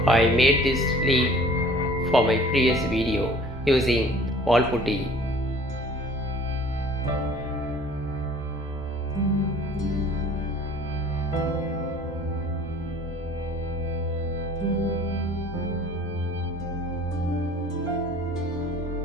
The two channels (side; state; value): both; normal; correlation 0.50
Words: I made this leaf for my previous video using wallputty.